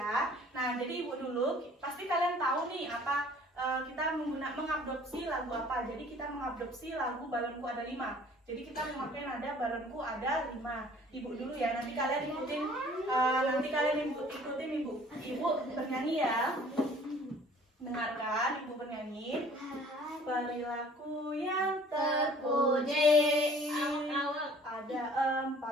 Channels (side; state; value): both; normal; correlation 0.52